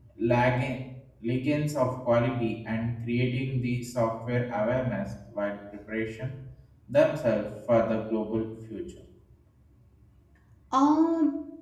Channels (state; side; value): identical; both; correlation 1.00